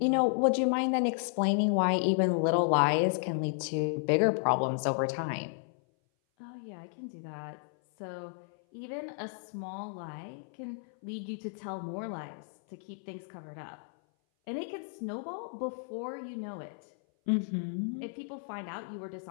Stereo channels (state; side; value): silent; right; 56 dB below the other